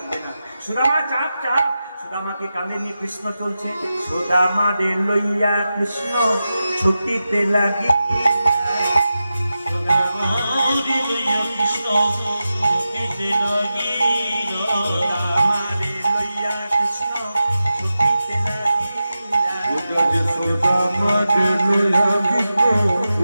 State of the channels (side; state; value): both; inverted; correlation -0.92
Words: না। সুদামা চাপ চাপ, সুদামাকে কাঁধে নিয়ে কৃষ্ণ চলছে। সুদামা রে লইয়া কৃষ্ণ ছুটিতে লাগি, সুদামারে লইয়া কৃষ্ণ ছুটিতে লাগিলা। সুদামারে লইয়া কৃষ্ণ ছুটিতে লাগিলা। সুদামারে লইয়া কৃষ্ণ